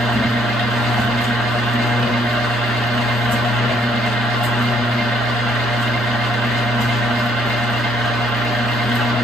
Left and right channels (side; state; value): both; normal; correlation 0.67